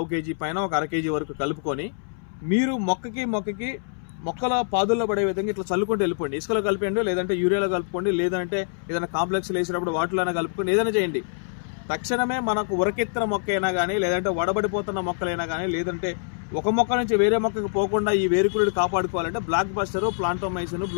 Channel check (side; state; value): right; silent; 62 dB below the other